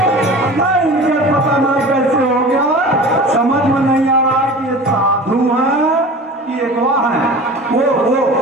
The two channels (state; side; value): normal; both; correlation 0.37